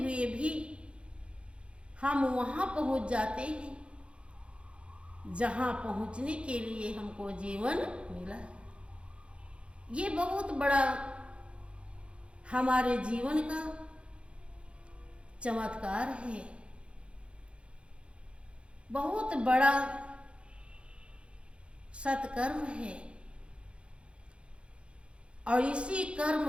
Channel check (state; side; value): late; left; 0.058 ms